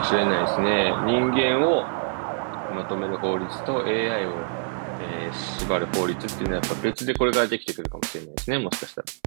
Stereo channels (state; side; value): silent; left; 62 dB below the other